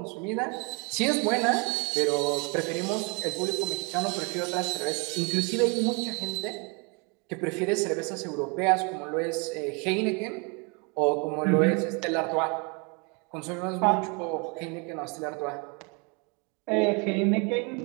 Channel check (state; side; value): quieter; left; 32.4 dB